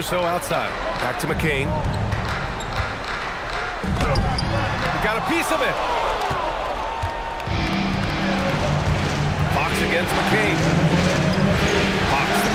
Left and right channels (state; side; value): identical; both; correlation 1.00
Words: outside. Back to McCain. He got a piece of it. Fox against McCain. Fox the